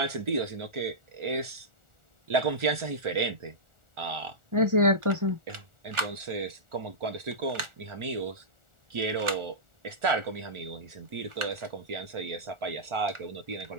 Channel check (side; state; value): left; late; 1.4 ms